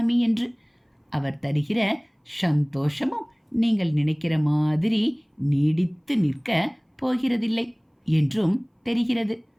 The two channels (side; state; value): both; identical; correlation 1.00